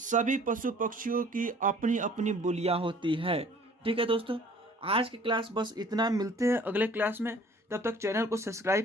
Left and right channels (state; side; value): normal; both; correlation 0.52